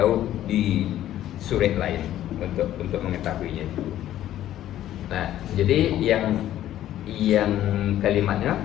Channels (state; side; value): quieter; right; 12.6 dB